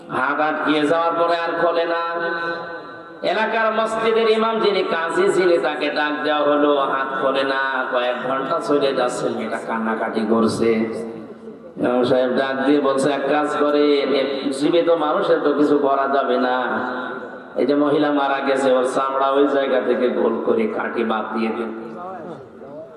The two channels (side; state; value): both; identical; correlation 1.00